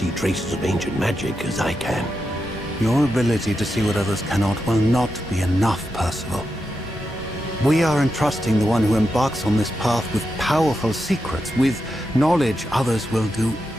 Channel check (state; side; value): normal; both; correlation 0.87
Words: traces of ancient magic as I can. Your ability to see what others cannot will not be enough, Percival. We are entrusting the one who embarks on this path with powerful secrets, with knowledge others will do